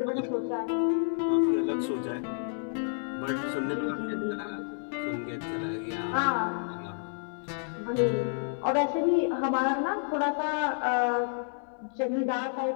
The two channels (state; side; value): silent; right; 58 dB below the other